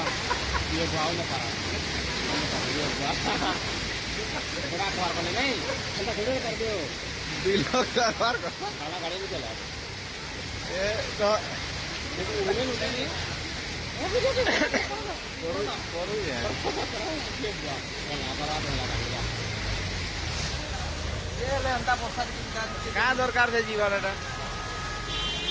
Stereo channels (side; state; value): both; identical; correlation 1.00